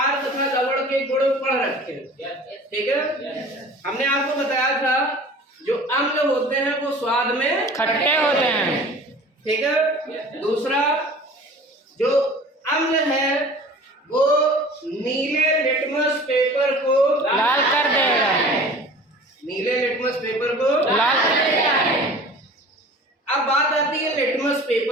तथा लवण के गुण पढ़ रखे, ठीक है। हमने आपको बताया था जो अम्ल होते हैं वो स्वाद में खट्टे होते हैं, ठीक है। दूसरा, जो अम्ल है वो नीले लिटमस पेपर को लाल कर देगा। नीले लिटमस पेपर को लाल कर देगा। अब बात आती है लिटमस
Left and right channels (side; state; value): both; normal; correlation 0.43